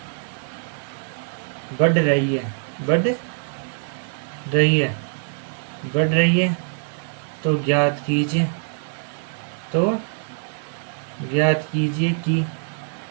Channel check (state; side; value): silent; left; 63 dB below the other